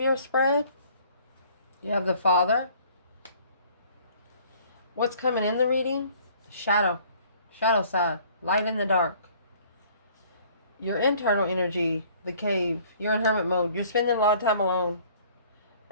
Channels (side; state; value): both; inverted; correlation -0.55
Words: spread, you have the Father. What's coming in the reading? Shadow side, light in the dark. Your internal energy, the cave. You're in hermit mode. You're spending a lot of time alone.